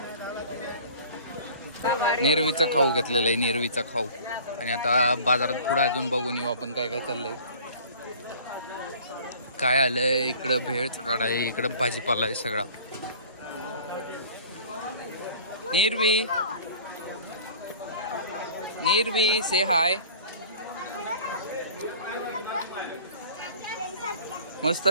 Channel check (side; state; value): both; inverted; correlation -0.46